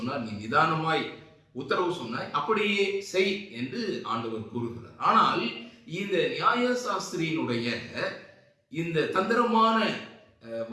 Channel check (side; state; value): both; identical; correlation 1.00